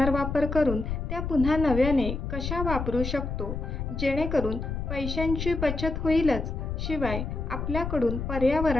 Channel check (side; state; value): left; noise; rumble, 4 dB below the sound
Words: करून त्या पुन्हा नव्याने कशा वापरू शकतो, जेणेकरून पैशांची बचत होईलच, शिवाय आपल्याकडून